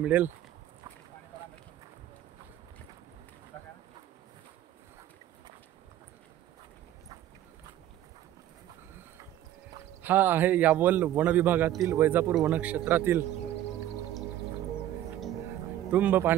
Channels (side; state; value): left; quieter; 12.6 dB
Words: हा आहे यावल वन विभागातील वैजापूर वनक्षेत्रातील तुंब